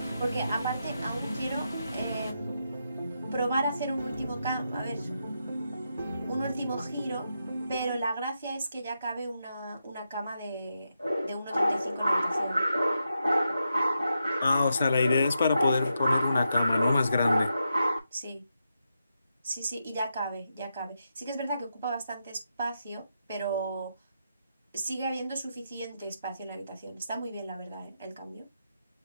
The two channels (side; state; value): both; inverted; correlation -0.85